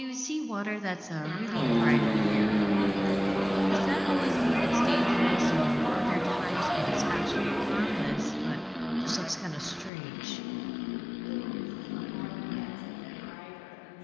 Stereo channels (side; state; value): right; drops out; at 9.9 s